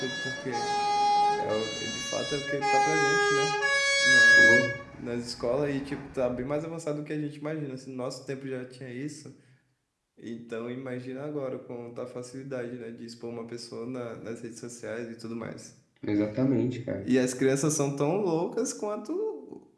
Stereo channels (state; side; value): identical; both; correlation 1.00